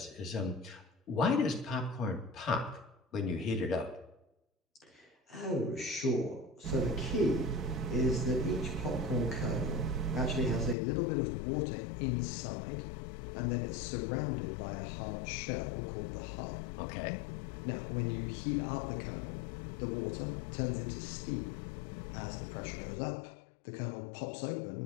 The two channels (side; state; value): right; drops out; at 10.8 s